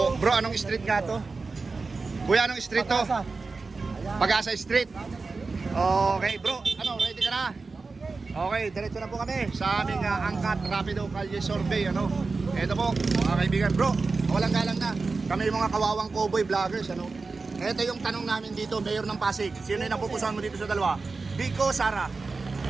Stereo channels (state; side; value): quieter; left; 4.1 dB